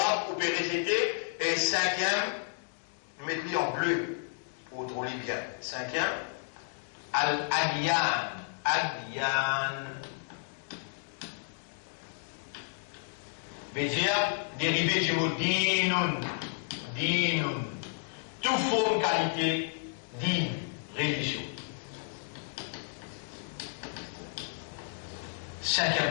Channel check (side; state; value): right; silent; digital silence